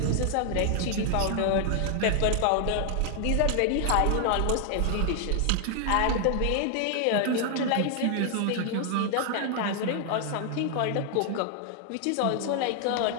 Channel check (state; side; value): different; both; correlation 0.00